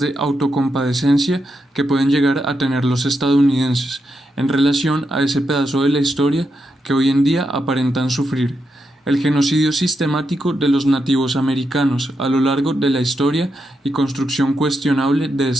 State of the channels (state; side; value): normal; both; correlation 0.84